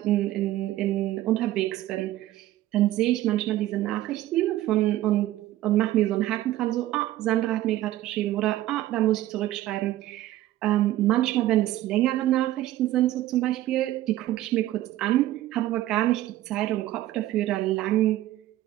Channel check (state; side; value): quieter; left; 14.7 dB